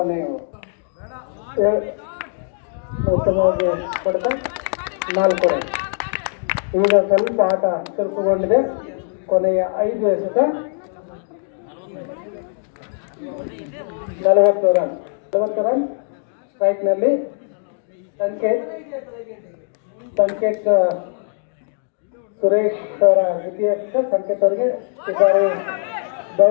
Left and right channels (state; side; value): silent; right; digital silence